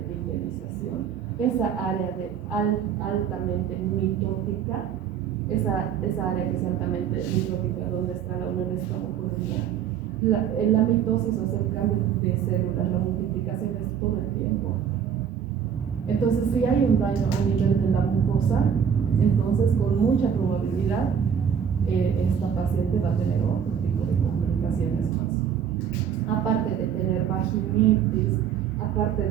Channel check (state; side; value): quieter; left; 8.1 dB